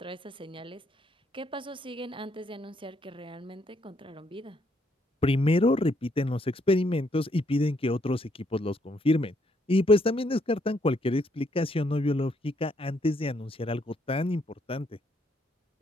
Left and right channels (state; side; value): normal; both; correlation 0.72